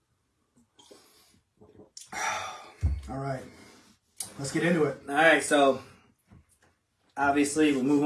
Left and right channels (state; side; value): identical; both; correlation 1.00